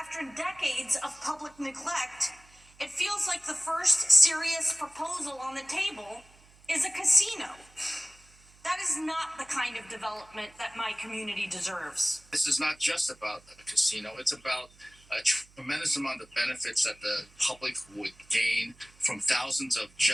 decades of public neglect, it feels like the first serious proposal on the table is a casino. That is not the kind of development that my community deserves. This is not just about a casino, it's about a tremendous amount of benefits that the public would gain from thousands of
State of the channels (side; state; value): right; noise; hum, 27 dB below the sound